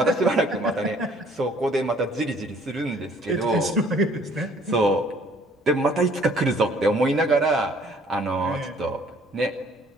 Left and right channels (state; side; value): normal; both; correlation 0.58